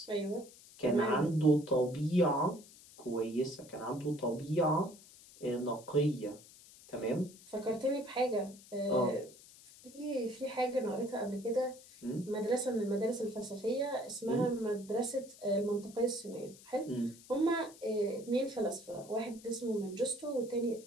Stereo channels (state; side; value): noise; left; hiss, 21 dB below the sound